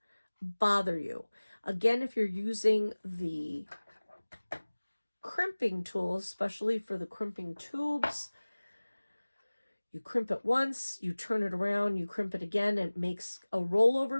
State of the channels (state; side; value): inverted; both; correlation -1.00